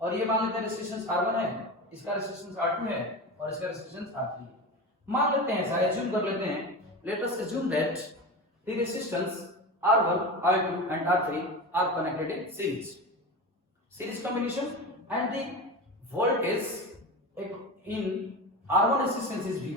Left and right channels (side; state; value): both; normal; correlation 0.26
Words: ये मान लेते हैं रेसिस्टेंस R1 है, इसका रेसिस्टेंस R2 है और इसका रेसिस्टेंस R3 है। मान लेते हैं, ऐसा एज्यूम कर लेते हैं, let us assume that the resistance R1, R2 and R3 are connected in series combination and the voltage in R1 resistance is